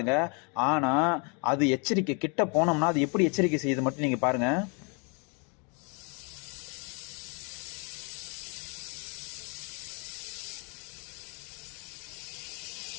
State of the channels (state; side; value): quieter; right; 35.0 dB